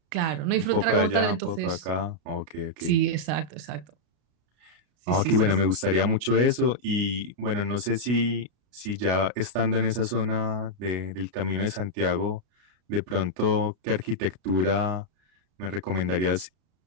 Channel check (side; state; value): left; late; 33 ms